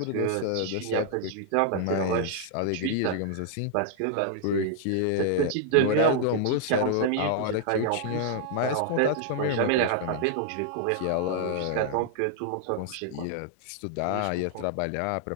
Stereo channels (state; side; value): different; both; correlation -0.01